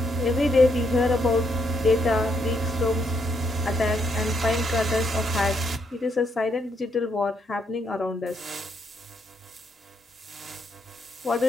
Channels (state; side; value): normal; both; correlation 0.76